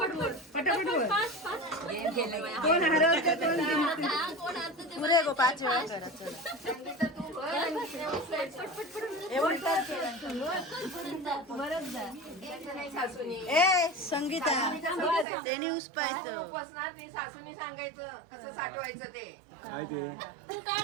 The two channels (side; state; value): left; drops out; at 15.2 s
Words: कोण हरवतं कोण पुरे गो 5 वेळा ए संगीता ते न्यूज पाहिजे. सासूनी सांगायचं कसं साठवायचं ते. काय ते